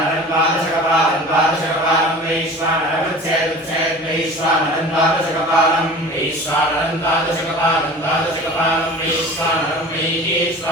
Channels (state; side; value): normal; both; correlation 0.39